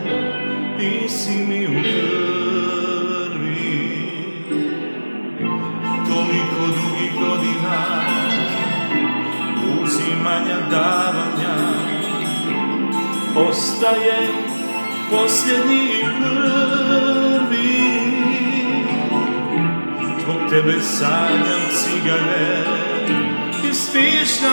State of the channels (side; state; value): both; inverted; correlation -1.00